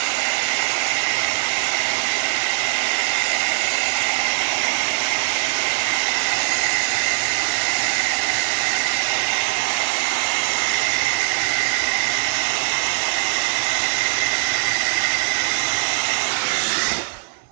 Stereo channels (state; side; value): silent; left; 59 dB below the other